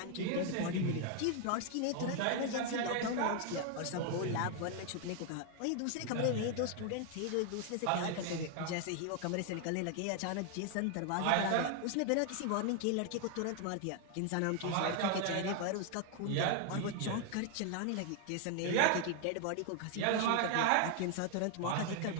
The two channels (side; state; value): both; different; correlation 0.00